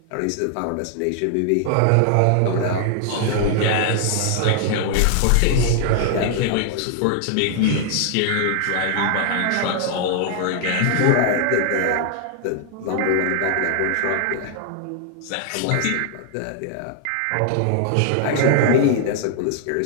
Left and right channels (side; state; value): both; different; correlation 0.00